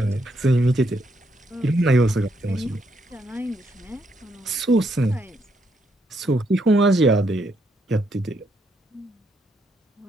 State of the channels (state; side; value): normal; both; correlation 0.76